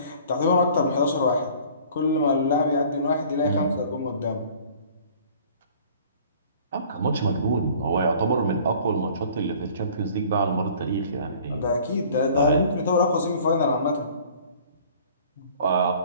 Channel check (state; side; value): inverted; both; correlation -0.50